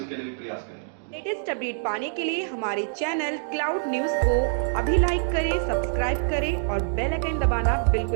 लिए भी प्रयास करेंगे। लेटेस्ट अपडेट पाने के लिए हमारे चैनल क्लाउड न्यूज को अभी लाइक करें, सब्सक्राइब करें और बेल आइकन दबाना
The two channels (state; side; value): silent; left; digital silence